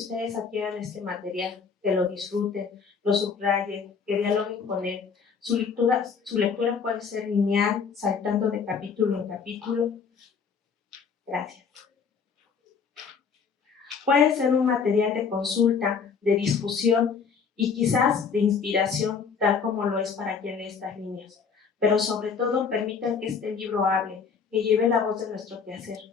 adquieran este material, que lo disfruten, lo subrayen, que dialoguen con él. Su lectura puede ser lineal, saltando de capítulo en capítulo. Gracias. Puede ser un material de consulta, de discusión y quizás de inspiración, tal como lo es para quien lee estas líneas. Pero sobre todo, permitan que este libro hable, que lleve la voz de nuestro quehacer.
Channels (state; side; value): quieter; right; 6.0 dB